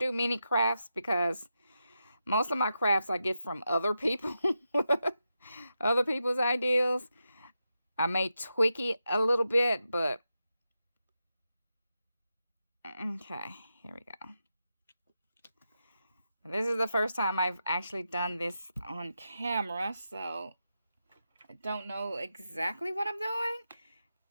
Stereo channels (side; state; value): both; inverted; correlation -0.88